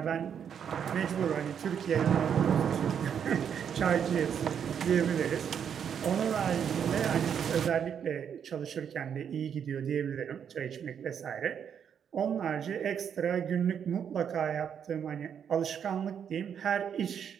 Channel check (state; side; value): quieter; left; 8.0 dB